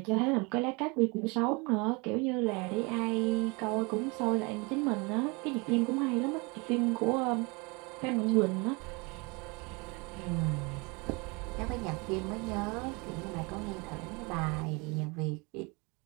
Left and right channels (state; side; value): quieter; left; 28.7 dB